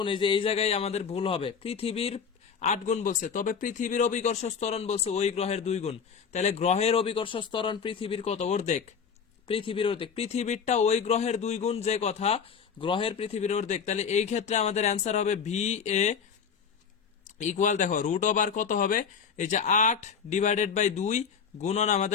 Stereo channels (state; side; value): quieter; right; 6.5 dB